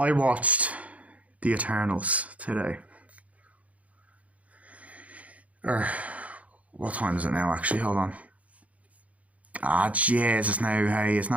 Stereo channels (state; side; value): late; left; 0.068 ms